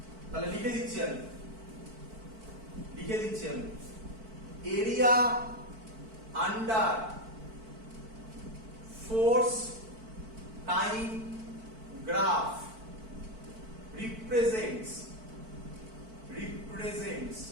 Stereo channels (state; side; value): late; left; 4.5 ms